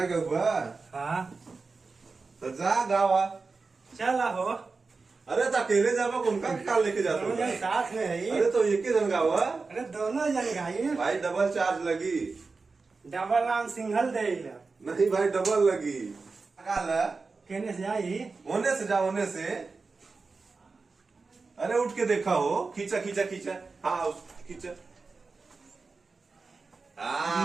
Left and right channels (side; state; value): left; quieter; 4.2 dB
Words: के हुआ हाँ तो जा गावा। चला हो। अरे तो अकेले जावा उनका क्या लेके जाते दोनों हो? जन साथ में है। अरे तो एक ही जन गावा अरे दोनों जन गाई। भाई, डबल चार्ज लगी। डबल नाम सिंगल दे। नहीं भाई, डबल लगी। कहने से आई। होने से जा, होने से। अरे उठ के देखा हो। खींचा खींचा खींचा। हाँ खींचा।